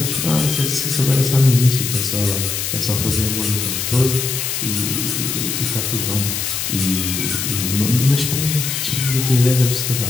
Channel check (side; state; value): left; noise; hiss, 2 dB below the sound